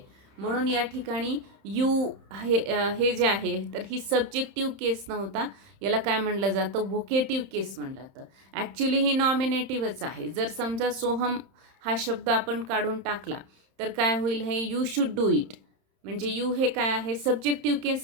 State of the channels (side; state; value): left; late; 30 ms